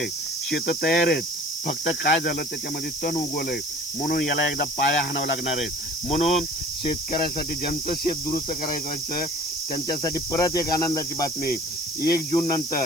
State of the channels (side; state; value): left; noise; hiss, 11 dB below the sound